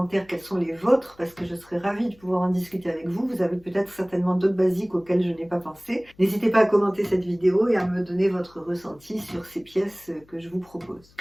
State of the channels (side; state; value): left; noise; hum, 29 dB below the sound